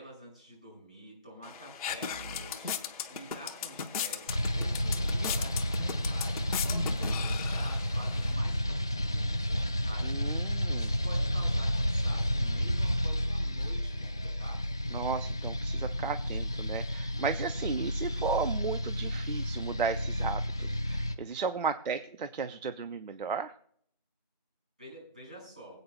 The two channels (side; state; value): both; inverted; correlation -0.67